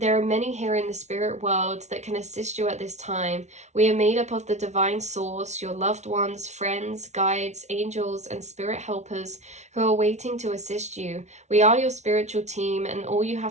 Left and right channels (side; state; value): left; late; 0.32 ms